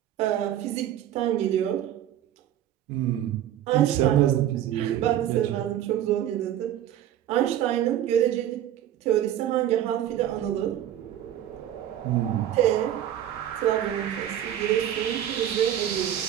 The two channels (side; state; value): left; quieter; 11.4 dB